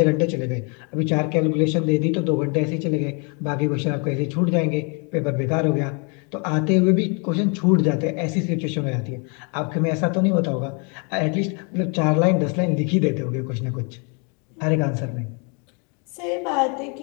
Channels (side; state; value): right; quieter; 35.7 dB